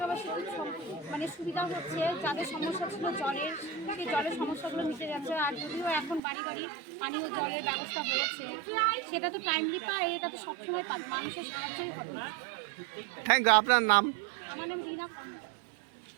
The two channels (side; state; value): left; drops out; at 6.2 s